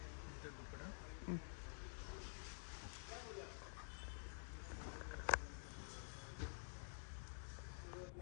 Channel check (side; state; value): right; silent; digital silence